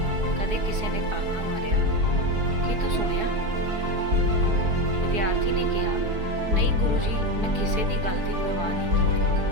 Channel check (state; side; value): late; left; 4.8 ms